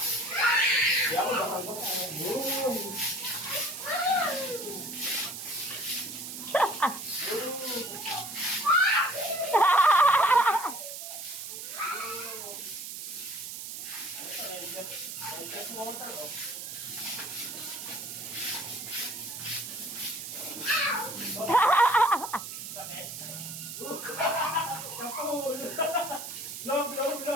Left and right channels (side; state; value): right; noise; hiss, 8 dB below the sound